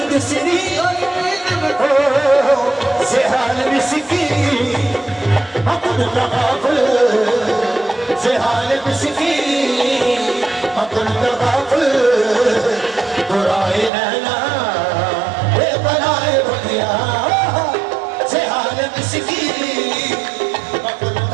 श्री से हाल मिसकी अकुल तगाफल से हाल मिसकी अकुल तगाफल बुराए नैना ये बनाए बतिया से हाल मिसकी अकुल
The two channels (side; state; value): left; drops out; at 13.9 s